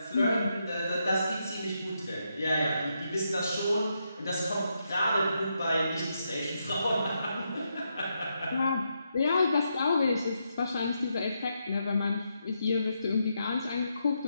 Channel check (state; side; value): inverted; both; correlation -0.82